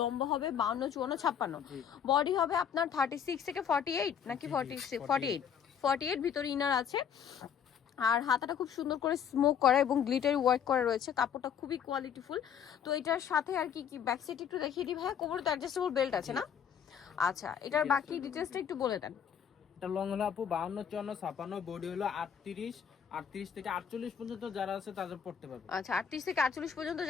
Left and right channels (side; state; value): right; quieter; 8.1 dB